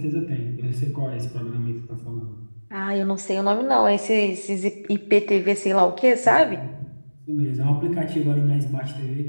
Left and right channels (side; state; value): both; inverted; correlation -1.00